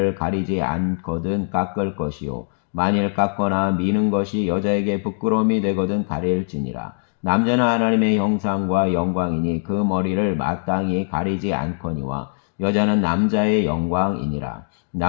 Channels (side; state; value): right; silent; digital silence